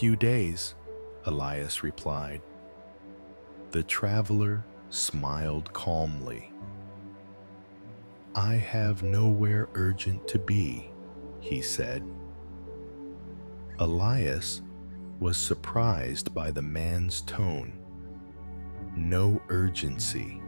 days," Elias replied. The traveler smiled calmly. "I have nowhere urgent to be," he said. Elias was surprised by the man's tone. No urgency,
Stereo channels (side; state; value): both; inverted; correlation -1.00